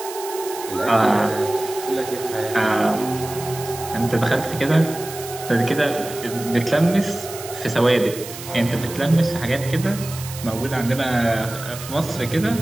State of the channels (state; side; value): noise; right; hiss, 12 dB below the sound